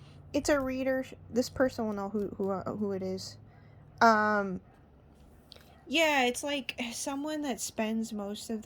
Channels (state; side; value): identical; both; correlation 1.00